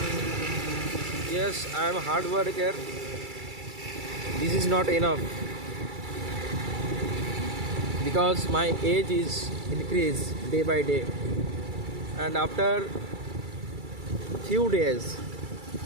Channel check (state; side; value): late; left; 2.3 ms